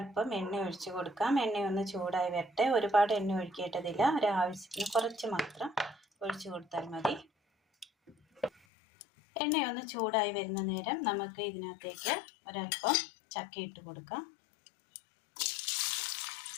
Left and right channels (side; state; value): right; drops out; at 8.5 s